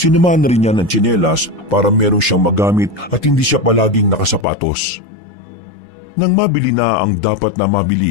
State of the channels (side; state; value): right; drops out; at 4.5 s